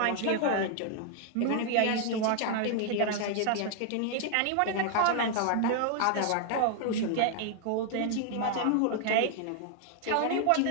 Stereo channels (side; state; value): both; different; correlation 0.00